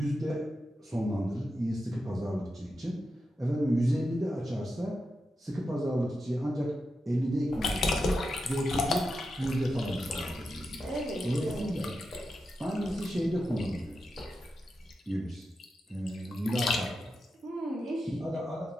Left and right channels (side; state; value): both; normal; correlation 0.89